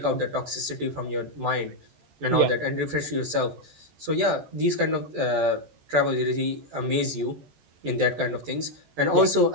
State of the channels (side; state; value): left; late; 14 ms